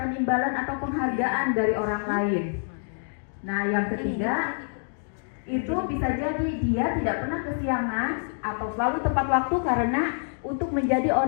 imbalan atau penghargaan dari orang lain. Nah, yang ketiga itu bisa jadi dia tidak pernah kesiangan atau selalu tepat waktu karena untuk menjadi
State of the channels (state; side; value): silent; right; 60 dB below the other